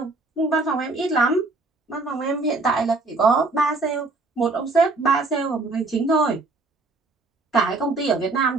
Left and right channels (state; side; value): quieter; left; 3.4 dB